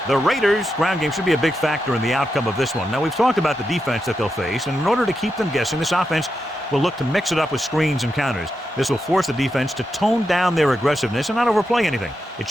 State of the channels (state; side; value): normal; both; correlation 0.87